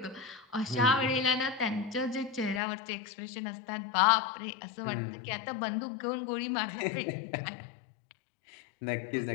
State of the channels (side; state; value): right; drops out; at 2.6 s